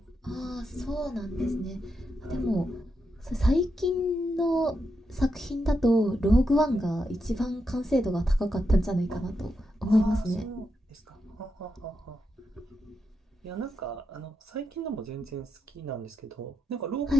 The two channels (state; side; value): normal; both; correlation 0.84